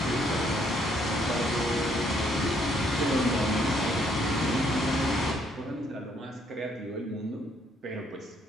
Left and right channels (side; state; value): both; normal; correlation 0.69